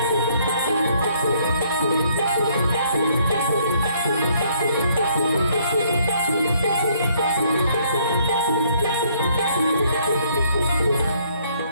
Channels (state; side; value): inverted; both; correlation -0.66